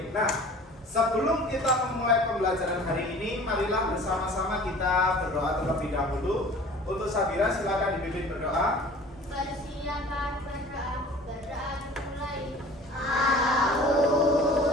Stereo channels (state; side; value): normal; both; correlation 0.45